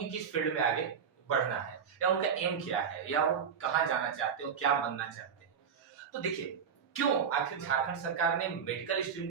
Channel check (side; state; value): left; quieter; 7.0 dB